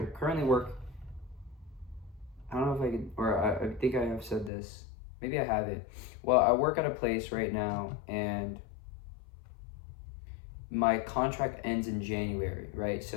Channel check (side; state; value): right; drops out; at 4.5 s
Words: work, I don't know if I can, or I think I have said this, maybe I haven't. Well, I work at a place right now, and my contract ends in January, right?